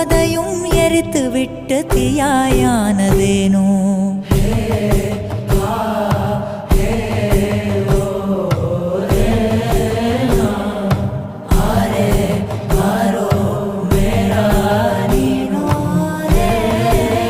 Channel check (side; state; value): both; identical; correlation 1.00